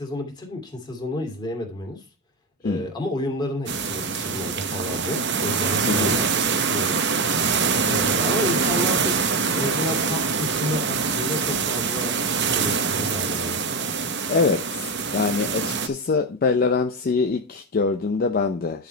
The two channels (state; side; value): normal; both; correlation 0.13